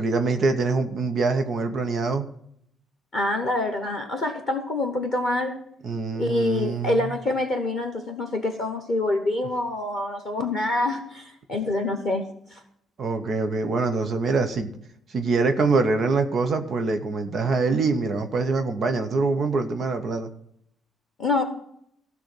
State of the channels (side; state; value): both; normal; correlation 0.68